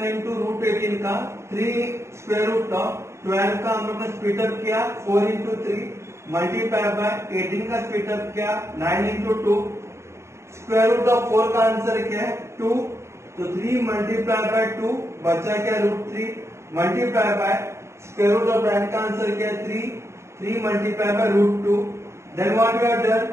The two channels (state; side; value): late; left; 0.13 ms